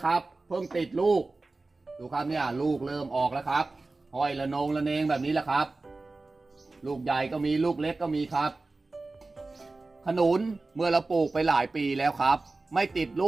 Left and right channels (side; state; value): left; quieter; 3.4 dB